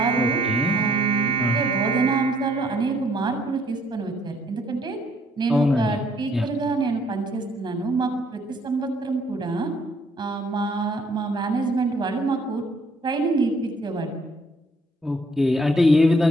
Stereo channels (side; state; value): both; normal; correlation 0.65